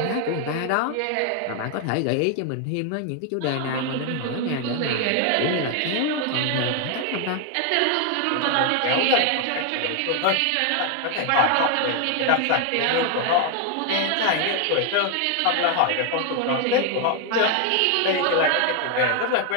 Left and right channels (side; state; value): both; different; correlation 0.00